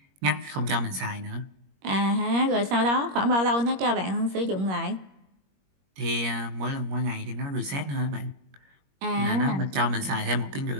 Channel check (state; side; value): late; left; 21 ms